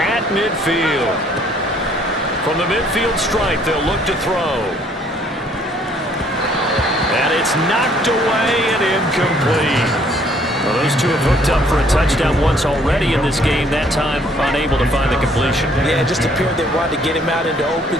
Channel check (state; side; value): normal; both; correlation 0.62